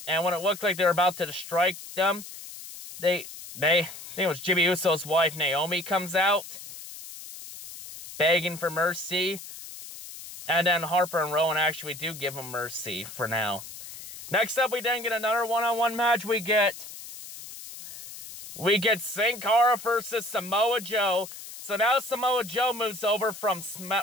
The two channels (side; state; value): left; noise; hiss, 13 dB below the sound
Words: And when it looked like they were about to strike them, I think it was Jimmy Uso's wife, Naomi, comes out, begging for mercy. And then Harper and Rowan actually do give him mercy for now. Next up, we then get another one-on-one match. We get Sin Cara versus Samoa Joe. So now Samoa Joe moves over from